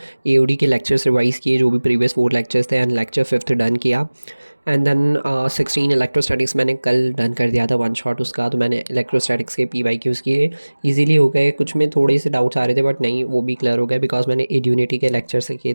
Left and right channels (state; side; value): inverted; both; correlation -1.00